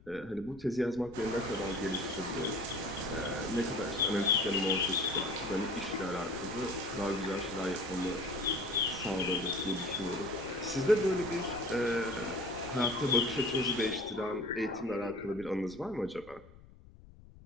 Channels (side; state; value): left; noise; rumble, 21 dB below the sound